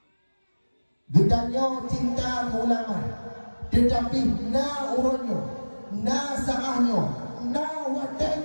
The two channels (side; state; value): both; inverted; correlation -1.00